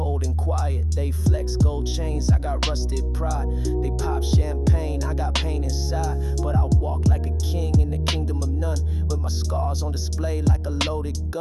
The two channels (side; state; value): both; identical; correlation 1.00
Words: and quiet. They flex gold chains, I got rusted pride. They pop champagne, I got pain inside. But I walk like a king in the kingdom of none, with my scars on display like a loaded